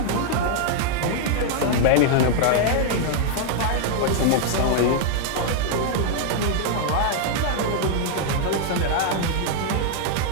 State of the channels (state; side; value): different; both; correlation 0.00